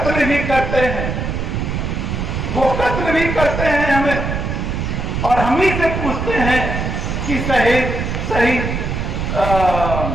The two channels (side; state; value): right; noise; rumble, 2 dB below the sound